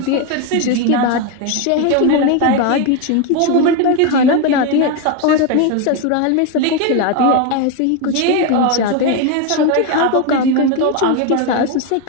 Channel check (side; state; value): both; different; correlation 0.02